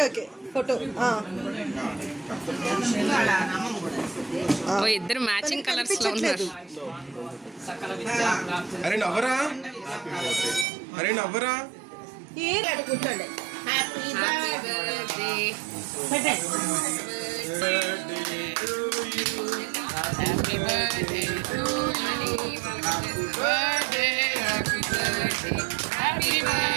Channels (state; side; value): drops out; left; at 10.7 s